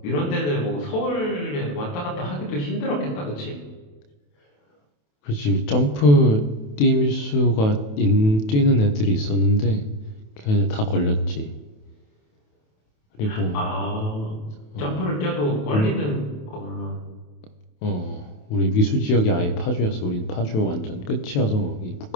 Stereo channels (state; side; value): late; right; 28 ms